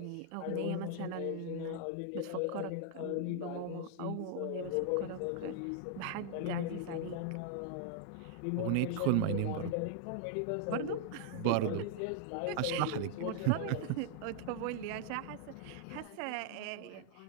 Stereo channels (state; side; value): different; both; correlation -0.01